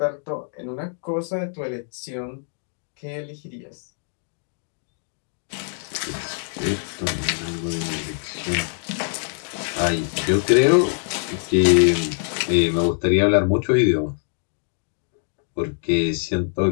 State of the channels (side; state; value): right; silent; digital silence